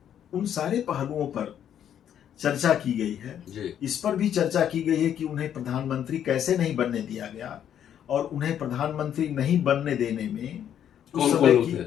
उन सारे पहलुओं पर चर्चा की गई है। इस पर भी चर्चा की गई है कि उन्हें प्रधानमंत्री कैसे नहीं बनने दिया गया, और उन्हें प्रधानमंत्री नहीं बनने देने में उस समय की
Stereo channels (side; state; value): right; quieter; 9.7 dB